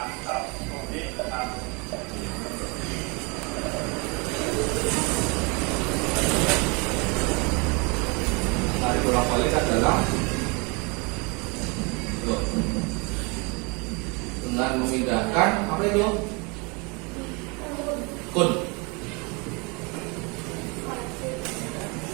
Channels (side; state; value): left; quieter; 30.1 dB